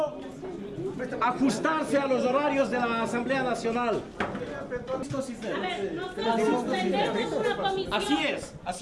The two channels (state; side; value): identical; both; correlation 1.00